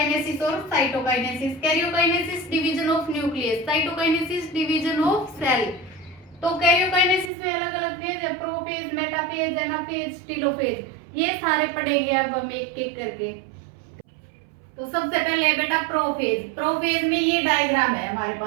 और cytokinesis. Karyokinesis division of nucleus, cytokinesis division of cell. तो कैरियोकाइनेसिस में अलग अलग फेज है, प्रोफेज, मेटाफेज, एनाफेज, टेलोफेज। ये सारे पढ़ेंगे अब हम एक एक करके। तो सबसे पहले बेटा प्रोफेज। प्रोफेज में ये डायग्राम है हमारे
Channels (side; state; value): left; drops out; at 7.3 s